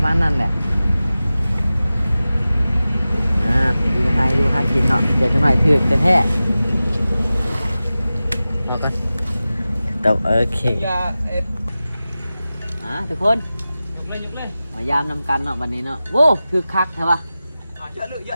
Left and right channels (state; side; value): inverted; both; correlation -0.95